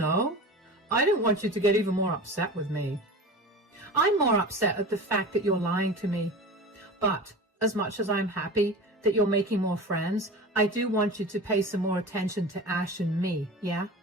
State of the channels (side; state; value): both; normal; correlation 0.33